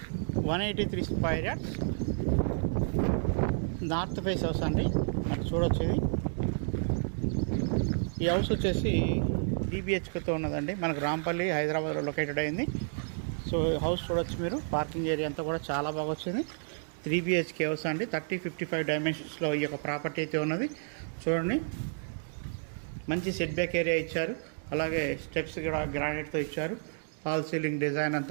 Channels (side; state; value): left; silent; digital silence